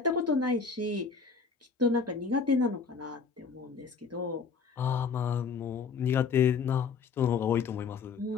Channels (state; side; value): quieter; right; 5.4 dB